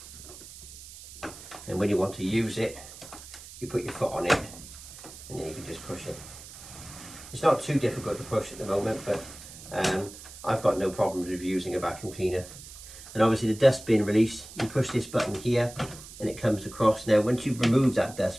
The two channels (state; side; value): noise; right; hiss, 16 dB below the sound